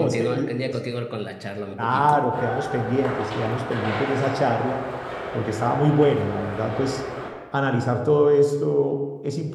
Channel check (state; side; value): identical; both; correlation 1.00